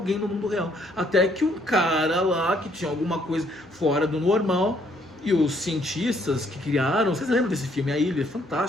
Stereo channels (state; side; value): normal; both; correlation 0.67